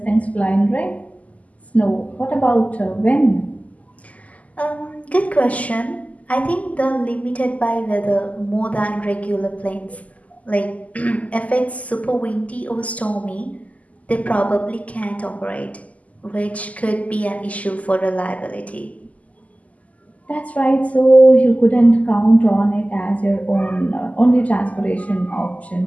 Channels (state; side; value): late; right; 0.072 ms